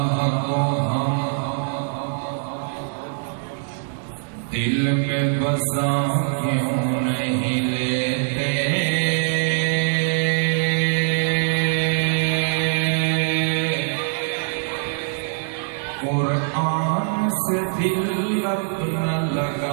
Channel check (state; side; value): silent; left; digital silence